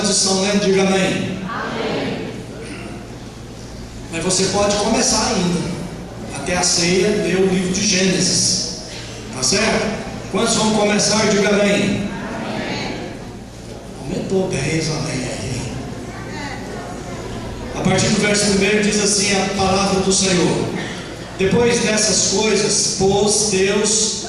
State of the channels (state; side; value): identical; both; correlation 1.00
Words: estão lendo? Diga amém. Mas você pode começar ainda, até a ceia, ler o livro de Gênesis, tá certo? Quantos vão começar? Diga amém. Aumentou 10, amém. A partir do verso 1 diz assim a palavra do Senhor: depois dessas coisas, pôs Deus